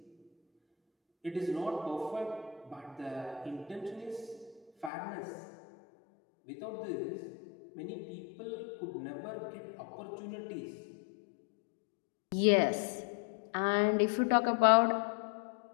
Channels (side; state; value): right; drops out; at 4.9 s